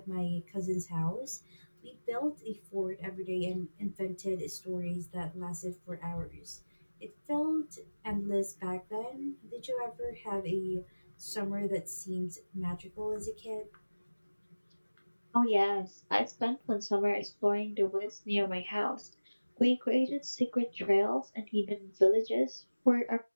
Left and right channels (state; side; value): inverted; both; correlation -1.00